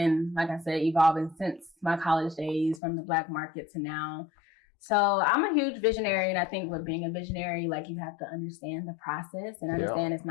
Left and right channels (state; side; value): drops out; right; at 2.8 s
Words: like I said, evolving since my college days, from the Black market to now. So I'm a huge visionary. And I think with being a visionary, like you have to understand the process and understand it's